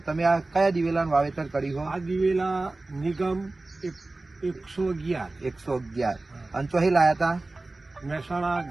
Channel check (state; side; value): quieter; left; 3.1 dB